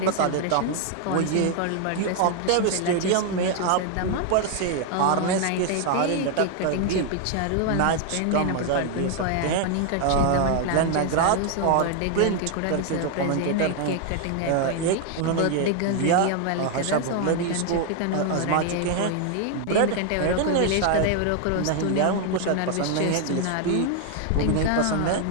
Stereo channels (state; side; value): different; both; correlation 0.00